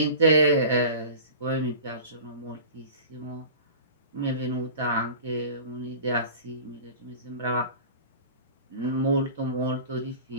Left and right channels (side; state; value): both; inverted; correlation -0.38